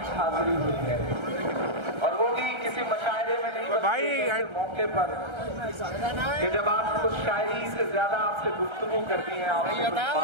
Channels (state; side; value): late; left; 1.3 ms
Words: हाजिरी हुई है और वो भी किसी मशायरे में नहीं भाई मौके पर कि जब आप कुछ शायरी से ज्यादा आपसे गुफ्तगू करती हैं।